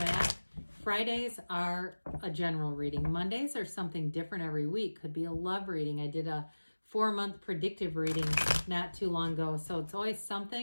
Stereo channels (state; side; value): inverted; both; correlation -1.00